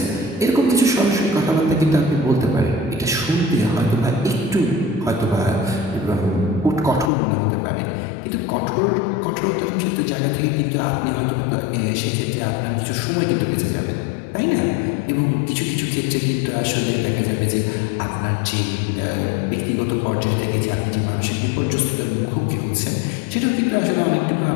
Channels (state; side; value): drops out; right; at 7.1 s